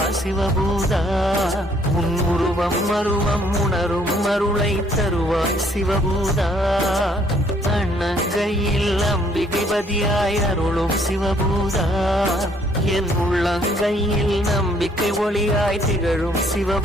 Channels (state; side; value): normal; both; correlation 0.64